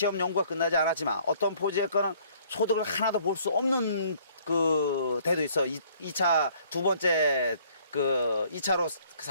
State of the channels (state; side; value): inverted; both; correlation -0.60